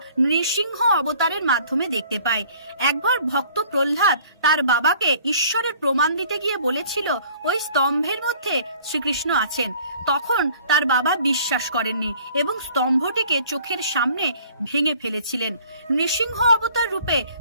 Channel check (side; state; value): both; inverted; correlation -0.54